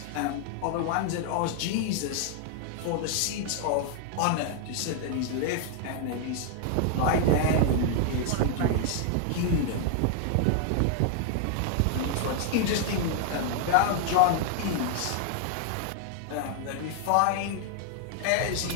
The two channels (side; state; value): both; different; correlation 0.00